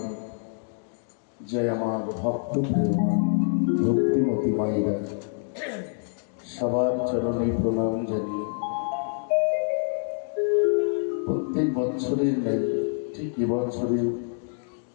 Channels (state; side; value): silent; right; 61 dB below the other